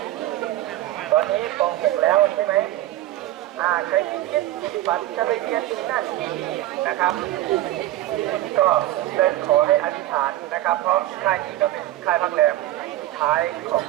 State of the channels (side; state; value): left; quieter; 15.1 dB